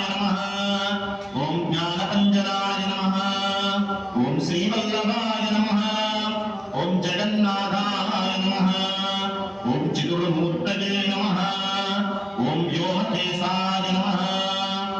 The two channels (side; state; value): both; identical; correlation 1.00